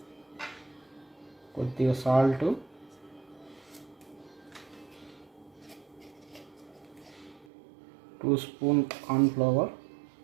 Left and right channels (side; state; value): left; drops out; at 7.5 s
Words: కొద్దిగా salt, two spoon corn flour,